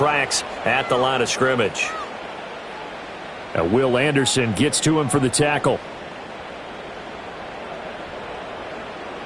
at the line of scrimmage. Now Will Anderson gets to him for the tackle.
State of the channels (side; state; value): both; identical; correlation 1.00